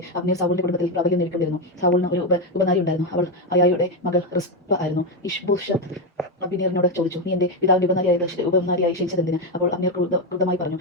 അബ്നേർ സാവൂളിന്റെ കുടുംബത്തിൽ പ്രാബല്യം നേടിക്കൊണ്ടിരുന്നു. സാവൂളിന് ഒരു ഉപനാരി ഉണ്ടായിരുന്നു. അവൾ അയായുടെ മകൾ റിസ്പ ആയിരുന്നു. ഇഷ്ബോഷത്ത് അബ്നേറിനോട് ചോദിച്ചു, നീ എന്റെ പിതാവിന്റെ ഉപനാരിയായി ക്ഷണിച്ചതെന്തിന്? അപ്പോൾ അബ്നേർ ക്രുദ്ധമായി പറഞ്ഞു,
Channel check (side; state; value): both; normal; correlation 0.08